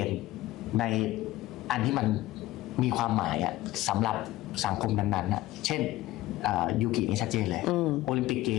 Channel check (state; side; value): quieter; right; 16.4 dB